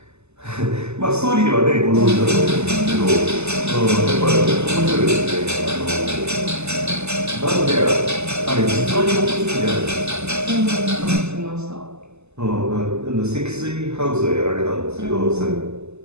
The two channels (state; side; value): late; left; 0.81 ms